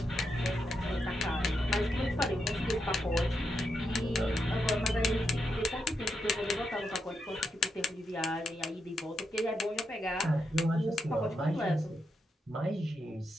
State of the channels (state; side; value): normal; both; correlation 0.83